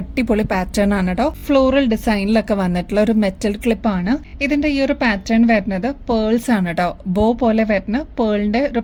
പാറ്റേൺ ആണ് കേട്ടോ. ഫ്ലോറൽ ഡിസൈനിലൊക്കെ വന്നിട്ടുള്ള ഒരു മെറ്റൽ ക്ലിപ്പ് ആണ്. ഇതിന്റെ ഈ ഒരു പാറ്റേൺ വരുന്നത് പേൾസ് ആണ് കേട്ടോ. ബോ പോലെ വരുന്ന പേളിന്റെ ഒരു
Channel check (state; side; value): identical; both; correlation 1.00